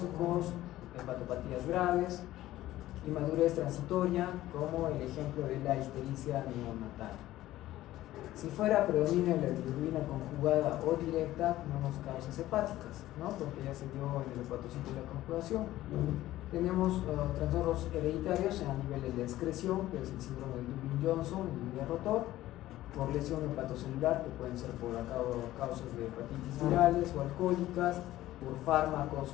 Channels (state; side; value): quieter; right; 15.2 dB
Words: hepatopatías graves, inmadurez transitoria, como el ejemplo de la ictericia neonatal. Si fuera predominio la bilirrubina conjugada o directa, tenemos causas hepáticas, ¿no? Porque ya se dio en el hepatocito de la conjugación. Tenemos trastornos hereditarios a nivel de la excreción, que es el síndrome de Dubin-Johnson, el rotor, por lesión hepatocelular, que pueden ser por causas de hepatitis virales o alcohólicas, por fármacos